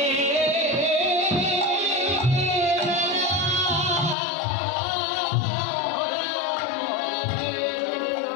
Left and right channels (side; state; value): right; drops out; at 4.2 s